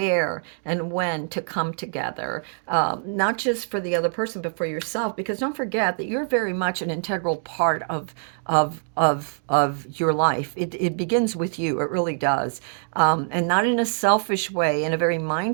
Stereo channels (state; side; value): silent; left; digital silence